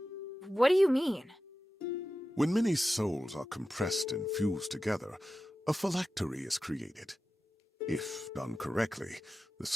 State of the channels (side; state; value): both; normal; correlation 0.93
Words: What do you mean? When many souls are compressed and fused together, a phylactery is created. If done correctly, the